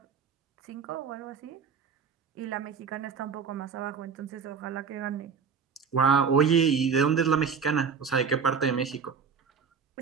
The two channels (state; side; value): quieter; left; 6.2 dB